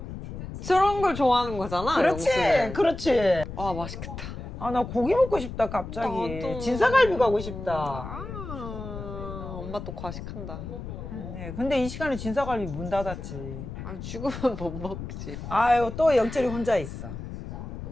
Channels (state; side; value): noise; left; rumble, 9 dB below the sound